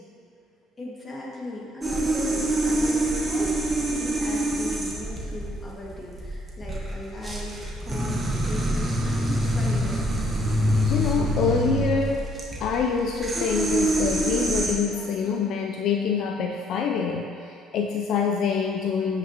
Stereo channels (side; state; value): both; normal; correlation 0.66